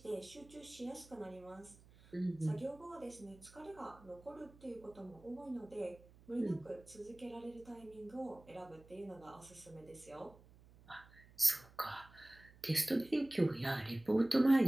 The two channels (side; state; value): right; noise; hum, 23 dB below the sound